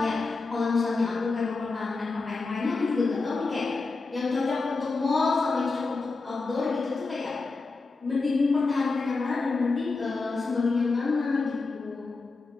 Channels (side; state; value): right; quieter; 3.9 dB